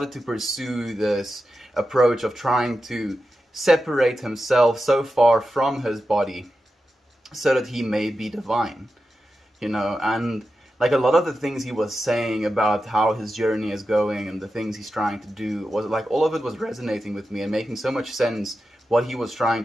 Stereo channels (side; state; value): both; normal; correlation 0.91